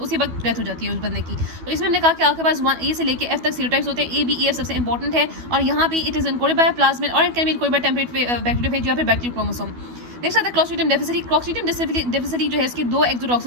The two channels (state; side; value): late; left; 12 ms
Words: वक्त डेथ हो जाती है उस बंदे की। तो इसमें हमने कहा कि आपके पास 1A से लेकर F तक सीरोटाइप्स होते हैं, A, B, E, F सबसे इंपॉर्टेंट है और यहाँ भी it is encoded by plasmid और it can be encoded by temperate bacteriophage या फिर बैक्टीरियल क्रोमोसोम। नेक्स्ट आता है क्लॉस्ट्रिडियम डिफिसिटी। क्लॉस्ट्रिडियम डिफिसिटी जो है इसके दो